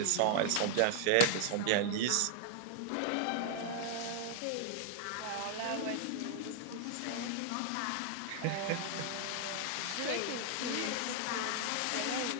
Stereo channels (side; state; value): both; different; correlation -0.01